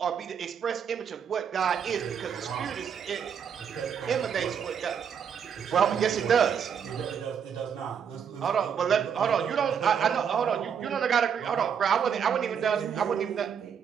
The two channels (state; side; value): quieter; left; 7.5 dB